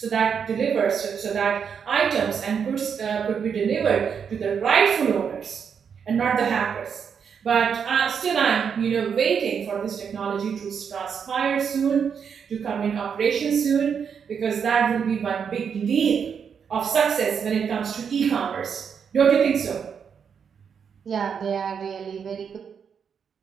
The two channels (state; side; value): quieter; left; 7.0 dB